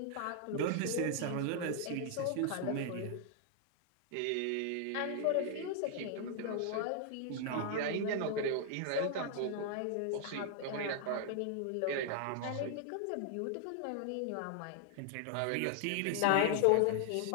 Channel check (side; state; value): both; different; correlation 0.00